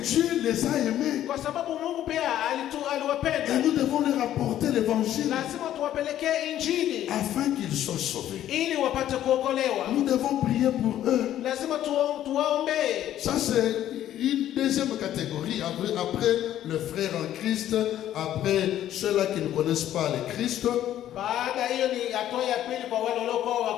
les a aimés. Kwa sababu Mungu pia aliwapenda. Et nous devons leur apporter l'évangile. Lazima tuwapelekee injili. Afin qu'ils soient sauvés. Ili wapate kuokolewa. Nous devons prier pour eux. Lazima tuwaombee. Ça c'est une deuxième catégorie. Après le frère en Christ, après ceux-là qui ne connaissent pas le Christ. Baada hiyo ni hatua ya pili kwa wale waliokuwa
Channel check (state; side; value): quieter; right; 12.0 dB